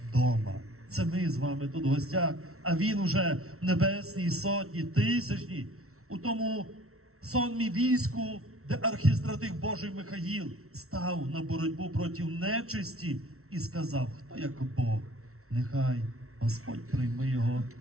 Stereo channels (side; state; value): left; late; 0.63 ms